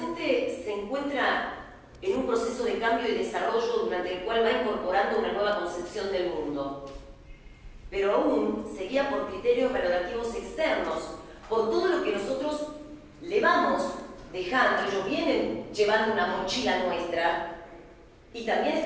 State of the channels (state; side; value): identical; both; correlation 1.00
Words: se encuentra en un proceso de cambio y desarrollo durante el cual va incorporando una nueva concepción del mundo, pero aún se guía por criterios valorativos externos, por todo lo que nosotros le vamos dejando. Ellos vienen llevando una mochila nuestra y también